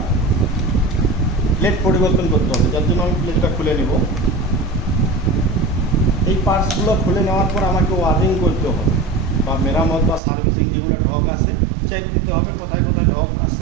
প্লেট পরিবর্তন করতে হবে, যার জন্য আমি প্লেটটা খুলে নেব। এই পার্টসগুলো খুলে নেওয়ার পর আমাকে ওয়ারিং করতে হবে, বা মেরামত বা সার্ভিসিং যেগুলো ঢক আছে চেক দিতে হবে, কোথায় কোথায় ঢক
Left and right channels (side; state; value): left; drops out; at 10.2 s